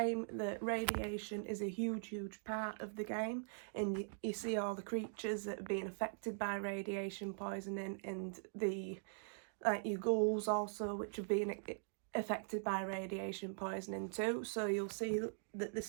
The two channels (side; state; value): left; silent; digital silence